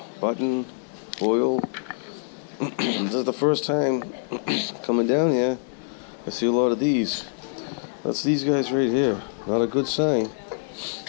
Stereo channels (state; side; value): silent; right; digital silence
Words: Button, foil. This is the first time coming down here. I see a lot of these. That's these guys right here. Not a good sign.